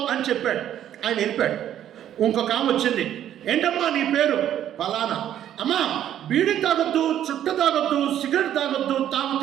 అని చెప్పాడు. ఆయన వెళ్ళిపోయాడు. ఇంకొక ఆమె వచ్చింది, ఏంటమ్మా నీ పేరు? ఫలానా. అమ్మా బీడీ తాగొద్దు, చుట్ట తాగొద్దు, సిగరెట్ తాగొద్దు,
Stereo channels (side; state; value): left; quieter; 11.0 dB